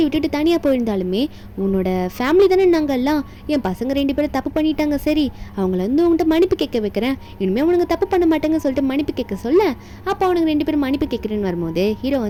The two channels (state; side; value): identical; both; correlation 1.00